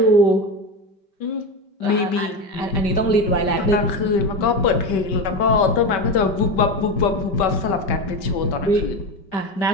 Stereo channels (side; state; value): right; late; 5.2 ms